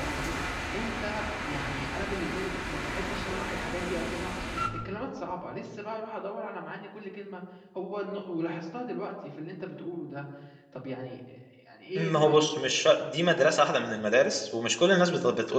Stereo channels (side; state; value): both; identical; correlation 1.00